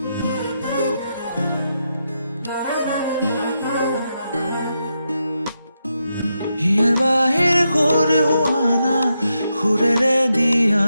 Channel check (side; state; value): both; inverted; correlation -0.85